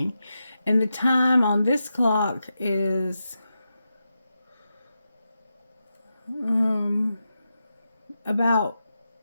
And the time on this clock is about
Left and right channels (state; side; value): inverted; both; correlation -0.89